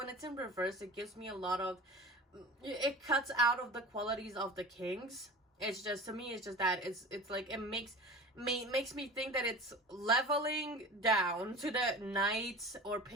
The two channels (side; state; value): both; normal; correlation 0.36